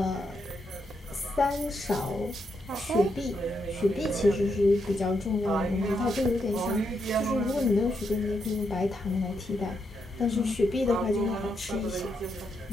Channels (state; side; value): normal; both; correlation 0.81